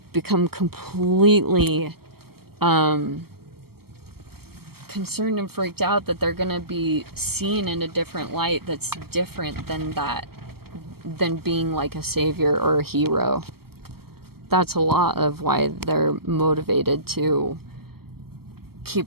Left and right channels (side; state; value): left; late; 0.95 ms